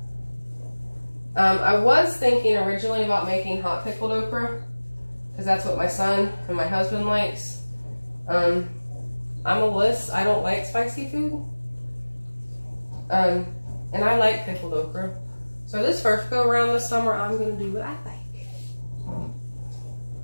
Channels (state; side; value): inverted; both; correlation -1.00